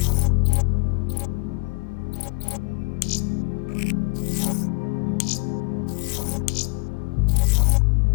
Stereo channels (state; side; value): quieter; right; 30.9 dB